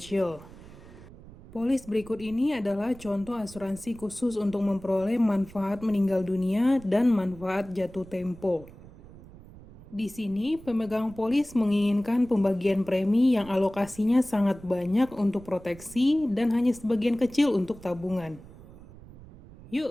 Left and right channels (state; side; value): noise; right; rumble, 19 dB below the sound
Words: Polis berikut ini adalah contoh asuransi khusus untuk memperoleh manfaat meninggal dunia dan manfaat jatuh tempo. Di sini, pemegang polis menginginkan pembagian premi yang alokasinya sangat banyak untuk proteksi dan hanya sebagian kecil untuk tabungan.